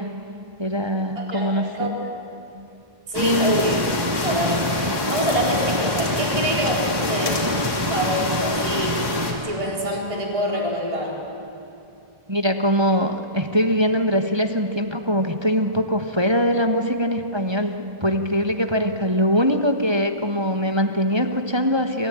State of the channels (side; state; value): left; late; 1.1 ms